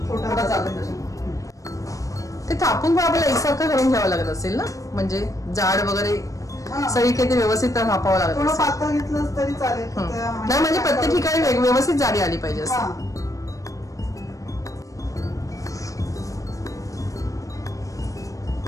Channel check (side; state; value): right; late; 0.16 ms